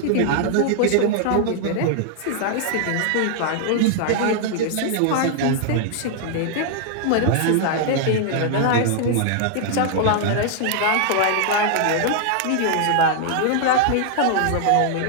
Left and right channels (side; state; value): both; different; correlation -0.01